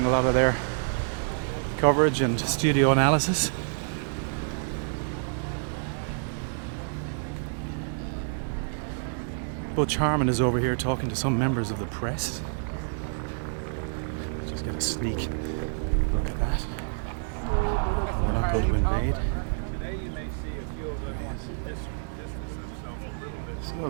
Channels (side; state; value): left; silent; digital silence